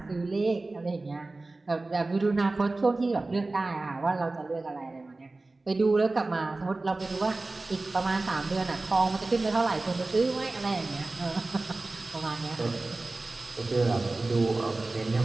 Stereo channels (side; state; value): left; quieter; 3.2 dB